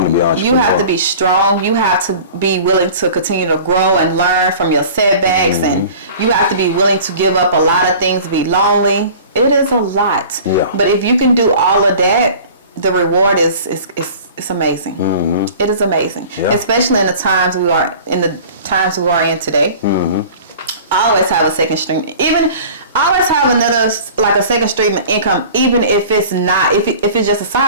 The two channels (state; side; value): inverted; both; correlation -0.43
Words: to be an entrepreneur. You have to be strong. You have to be willing to continue to grow and learn from your setbacks, and you have to be willing to give up a lot of things, be lonely. It is a lot. Yeah. But if you can do all of that, the reward is amazing. It is amazing. Yeah. Especially in the times we are in today. Always have a second stream. Always have another, like a second stream of income, even if it's not, if it's just a